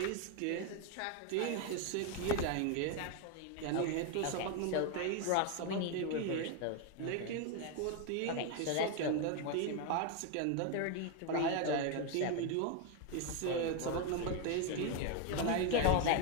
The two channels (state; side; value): different; both; correlation 0.01